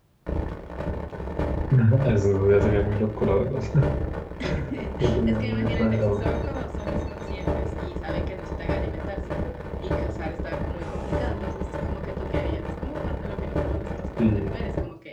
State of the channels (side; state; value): both; identical; correlation 1.00